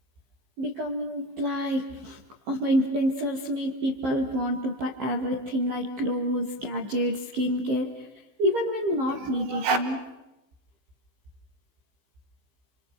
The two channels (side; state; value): left; late; 15 ms